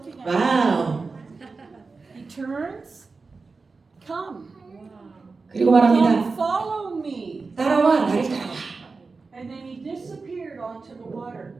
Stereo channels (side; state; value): left; quieter; 4.2 dB